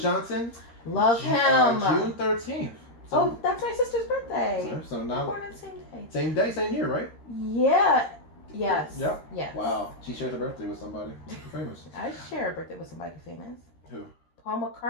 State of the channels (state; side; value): late; right; 13 ms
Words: Love him. June 13th. So, that's my sister's birthday. So now, born on the same day. Same day, same year, right? Yeah. Yes. Yep. Yes. Wow. She shares her birthday with somebody famous. I share a birthday with somebody famous. Who? Paul